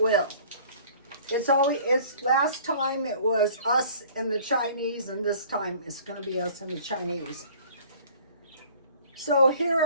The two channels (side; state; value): both; inverted; correlation -0.51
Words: will. It's last time it was us and the Chinese, and this time it's going to be us and the Chinese. So here